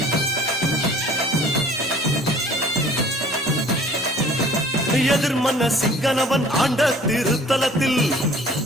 எதிர்மன்ன சிங்கனவன் ஆண்ட திருத்தலத்தில்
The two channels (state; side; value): normal; both; correlation 0.51